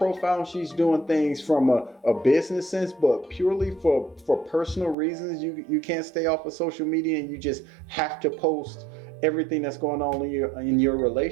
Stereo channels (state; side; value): drops out; left; at 5.0 s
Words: and she's doing things from a business sense, but purely for personal reasons, you can't stay off of social media, and you just have to post everything that's going on in your